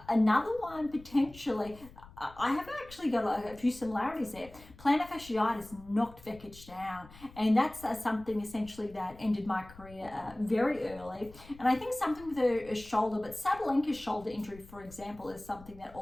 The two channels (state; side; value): noise; left; rumble, 20 dB below the sound